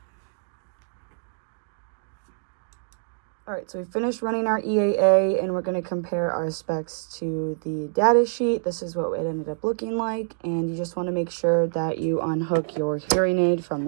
All right, so we finished running our EAA, and we're gonna compare our specs to the data sheet. This is what it ended up looking like, and you just wanna make sure that you unhook your hearing aid from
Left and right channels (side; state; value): left; silent; digital silence